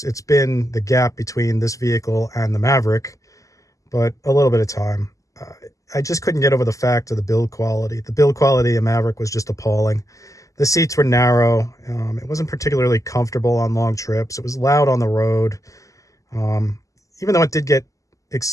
it's been the gap between this vehicle and the Maverick, but a little bit of time. I just couldn't get over the fact of the build quality. The build quality of Maverick was just appalling. The seats were narrow. It wasn't particularly comfortable on long trips. It was loud on the road. Um, Even though it did get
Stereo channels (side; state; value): right; late; 0.16 ms